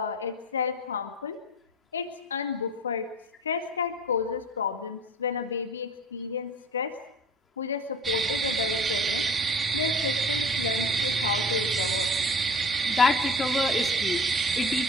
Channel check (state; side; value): normal; both; correlation 0.41